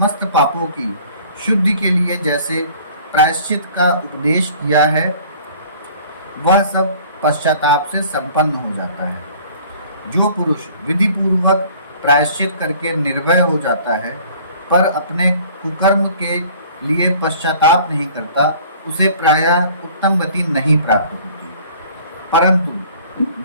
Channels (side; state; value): both; inverted; correlation -0.51